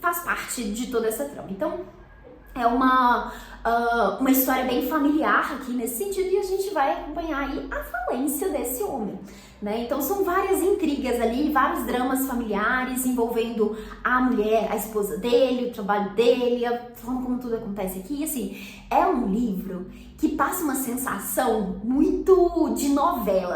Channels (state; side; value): identical; both; correlation 1.00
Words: faz parte de toda essa trama. Então é uma história bem familiar aqui nesse sentido, e a gente vai acompanhar aí a falência desse homem, né? Então são várias intrigas ali, vários dramas familiares envolvendo a mulher, a esposa dele, o trabalho dele, a forma como tudo acontece aqui. E assim, é um livro que passa uma sensação muito de